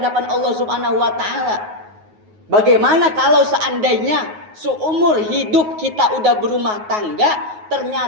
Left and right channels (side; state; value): left; late; 9.4 ms